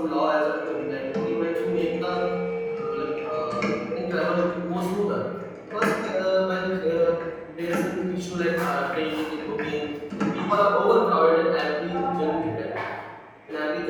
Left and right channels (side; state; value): both; identical; correlation 1.00